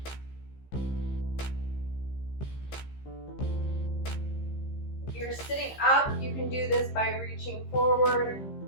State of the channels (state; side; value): late; right; 15 ms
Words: If you're sitting up, you can do this by reaching forward